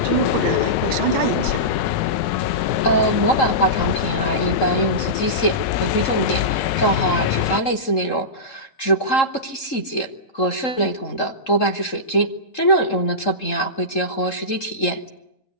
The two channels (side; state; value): right; late; 3.7 ms